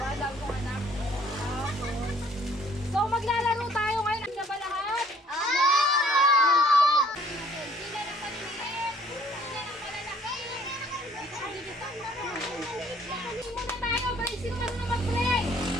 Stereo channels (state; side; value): normal; both; correlation 0.59